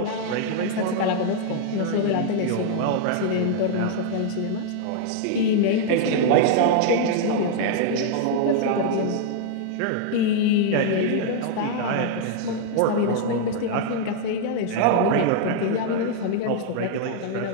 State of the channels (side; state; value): both; different; correlation -0.01